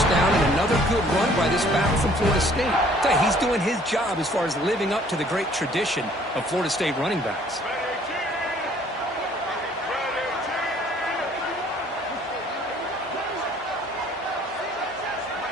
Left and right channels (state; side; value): normal; both; correlation 0.58